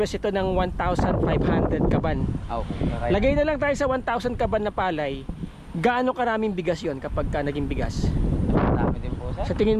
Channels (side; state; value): both; identical; correlation 1.00